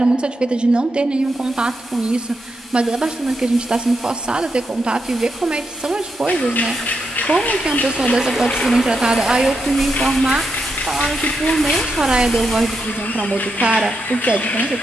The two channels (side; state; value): both; normal; correlation 0.84